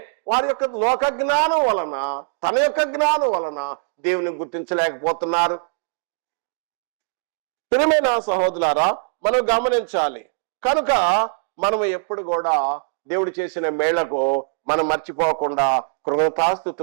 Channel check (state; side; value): silent; left; digital silence